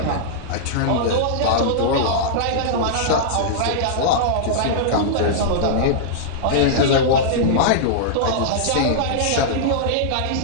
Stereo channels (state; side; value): different; both; correlation -0.02